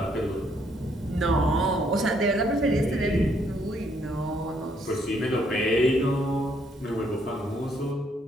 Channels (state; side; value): normal; both; correlation 0.70